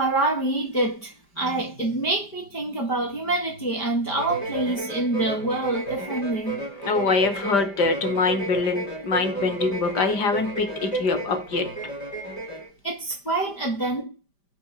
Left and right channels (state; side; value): late; right; 5.1 ms